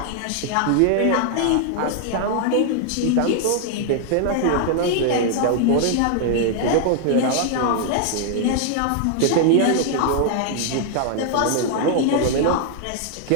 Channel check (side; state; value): both; different; correlation 0.00